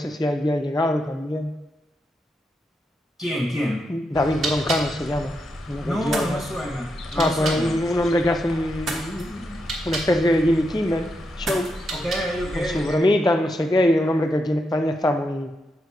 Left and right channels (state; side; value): normal; both; correlation 0.83